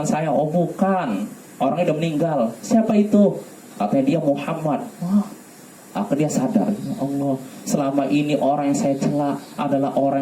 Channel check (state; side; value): identical; both; correlation 1.00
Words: saya? Oh bukan, orangnya udah meninggal. Siapa itu? Katanya dia Muhammad. Wah, akhirnya dia sadar, ya Allah, selama ini orang yang saya cela adalah